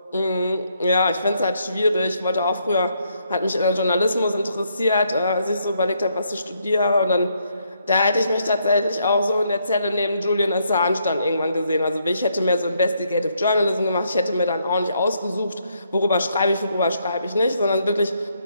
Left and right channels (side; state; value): both; inverted; correlation -0.74